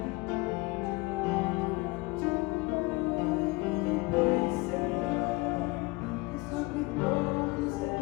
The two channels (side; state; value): right; quieter; 24.6 dB